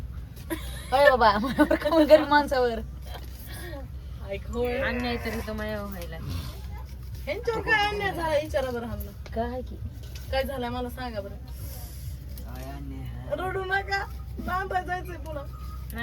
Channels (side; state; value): both; identical; correlation 1.00